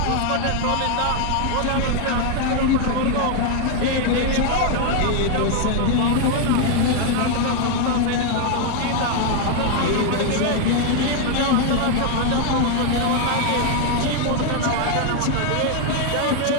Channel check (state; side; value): different; both; correlation 0.01